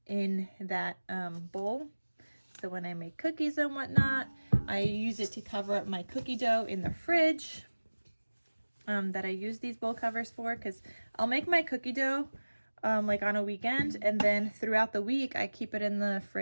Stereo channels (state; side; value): inverted; both; correlation -1.00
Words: in that bowl. So when I make cookies and whatnot, I use it to cover up my cookie dough in the fridge that I use these bowl covers for, because I'll make my cookie dough like on a weekend, and then throughout the week I keep it in the